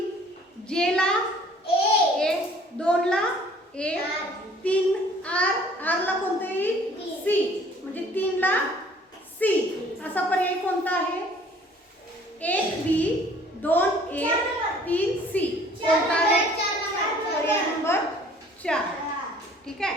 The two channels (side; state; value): both; normal; correlation 0.55